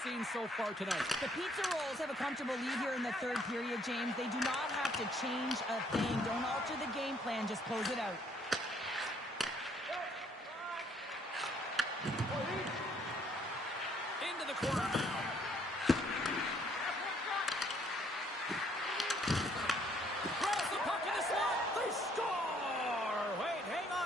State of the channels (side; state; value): both; normal; correlation 0.65